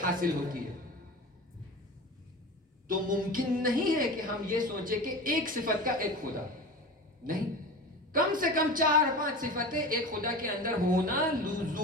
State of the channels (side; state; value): both; normal; correlation 0.31